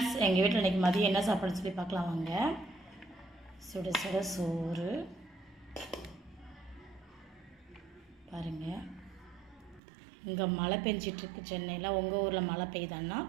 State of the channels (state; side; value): drops out; left; at 9.8 s